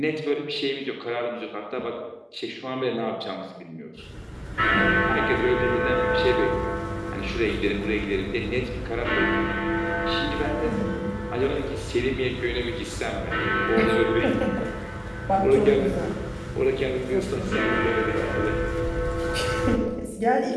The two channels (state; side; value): identical; both; correlation 1.00